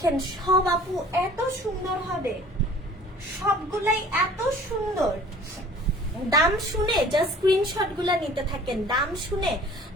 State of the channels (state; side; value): normal; both; correlation 0.49